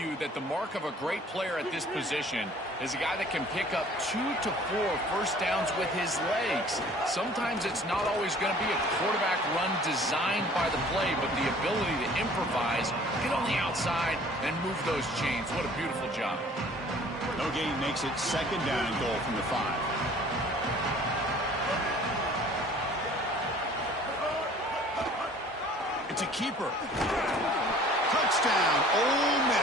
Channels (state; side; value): normal; both; correlation 0.51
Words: that the mark of a great player at this position is a guy that can pick up 2 to 4 first downs with his legs. Sometimes it's not always going to be a quarterback run designed by the play, but the ability to improvise, get on the outside, and move those chains. What a beautiful job. No gain makes it second down and goal from the 5. It's a keeper. Touchdown, Ole